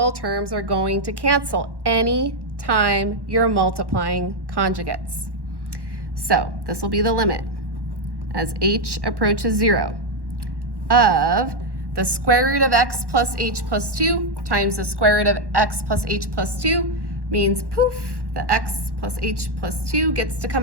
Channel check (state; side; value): late; left; 1.1 ms